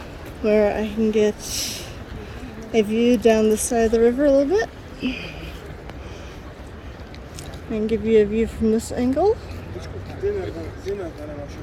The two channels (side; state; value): both; identical; correlation 1.00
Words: where I can get a view down the side of the river a little bit. And give you a view from this angle.